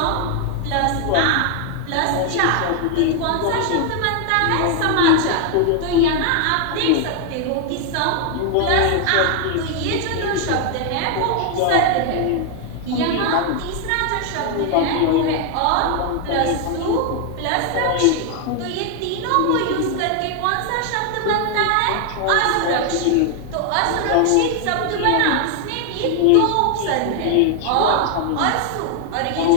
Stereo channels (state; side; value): different; both; correlation 0.00